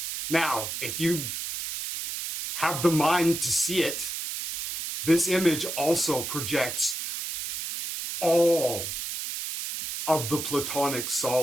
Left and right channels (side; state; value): right; noise; hiss, 5 dB below the sound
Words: Now, if you have the mind to see it, this image also projects all of the platonic